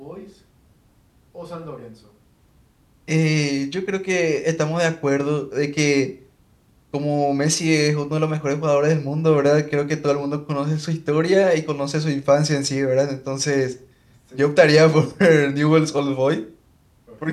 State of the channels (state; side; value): identical; both; correlation 1.00